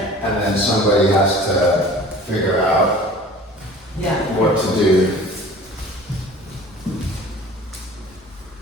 somebody has to figure out Yeah. what to do.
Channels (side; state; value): both; normal; correlation 0.44